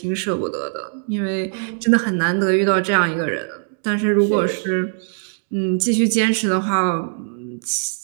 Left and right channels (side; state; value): left; silent; digital silence